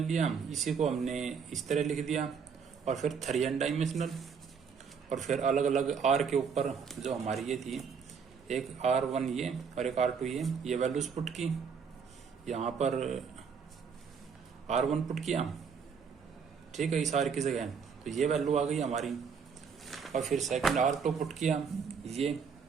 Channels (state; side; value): quieter; left; 6.2 dB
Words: लिया, इसी को हमने इस तरह लिख दिया। और फिर 3n डायमेंशनल। और फिर अलग अलग R के ऊपर जो हमारी ये थी, एक R1 ये और एक R2 ये वैल्यूज पुट की। यहाँ पर R1 पुट किया, ठीक है, इस R की जगह, तो ये वैल्यू आ गई हमारी। और फिर सेकंड R2 पुट किया ये,